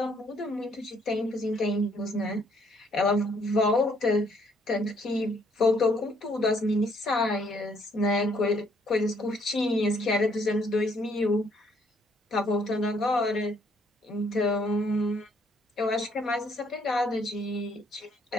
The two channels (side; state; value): both; normal; correlation 0.67